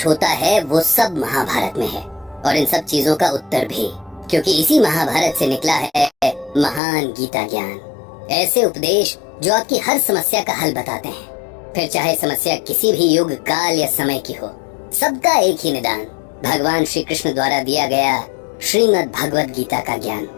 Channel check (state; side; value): drops out; right; at 6.8 s